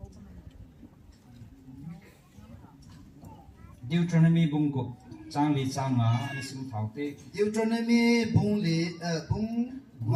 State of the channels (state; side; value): identical; both; correlation 1.00